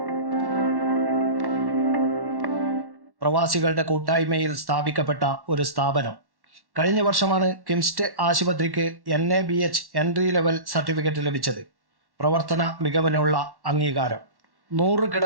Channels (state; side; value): late; left; 1.1 ms